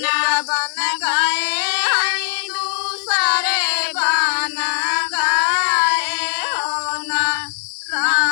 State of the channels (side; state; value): right; silent; 66 dB below the other